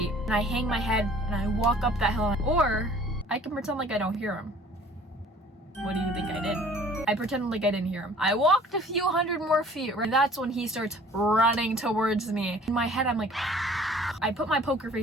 and I hang my head, and I walk up that hill, or I can pretend like I don't hear him. What do you think I did? I pretended like I didn't hear him. I walked a few hundred more feet, and that's when he starts running towards me. In my head, I'm like, I put my poker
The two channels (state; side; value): normal; both; correlation 0.51